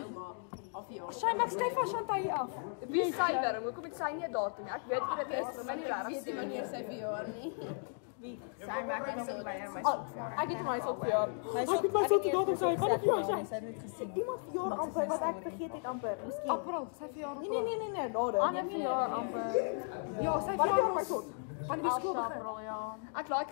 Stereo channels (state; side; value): silent; right; 54 dB below the other